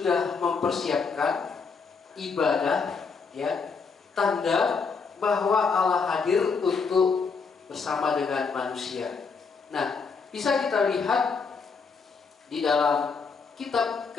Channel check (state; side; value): quieter; right; 5.1 dB